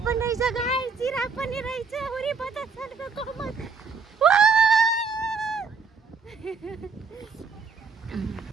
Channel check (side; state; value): left; quieter; 5.1 dB